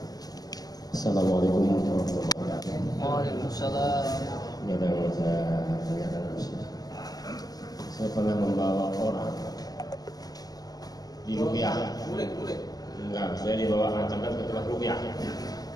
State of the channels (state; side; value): late; right; 0.18 ms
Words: Assalamualaikum warahmatullahi wabarakatuh. Waalaikumsalam. Ini ada yang saya tanyakan. Saya pernah membawa orang di rupiah. Boleh. Enggak, saya dibawa ancaman ke tempat rupiah.